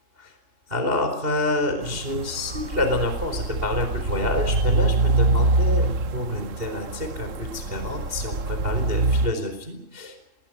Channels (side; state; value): left; late; 2.8 ms